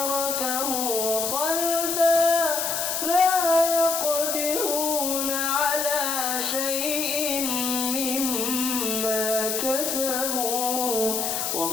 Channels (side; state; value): left; noise; hiss, 1 dB below the sound